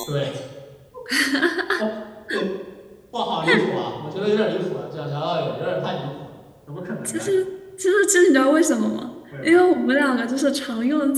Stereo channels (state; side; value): identical; both; correlation 1.00